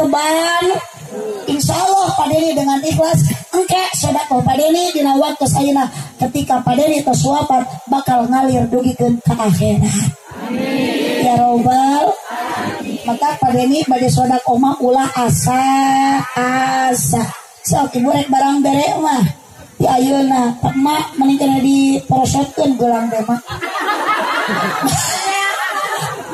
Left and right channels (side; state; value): both; identical; correlation 1.00